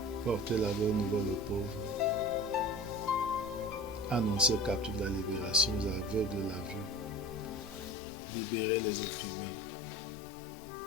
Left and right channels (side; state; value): right; drops out; at 8.0 s